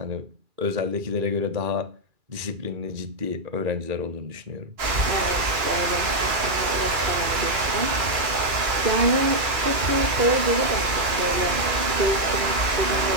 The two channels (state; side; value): late; left; 2.4 ms